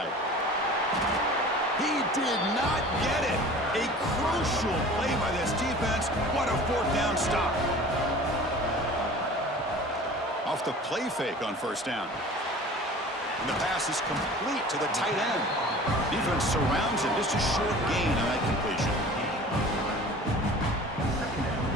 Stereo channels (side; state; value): both; normal; correlation 0.42